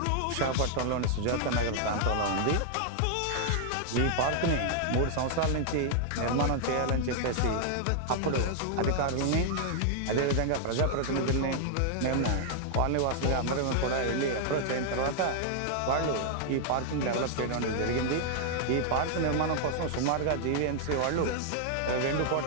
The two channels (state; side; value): different; both; correlation -0.01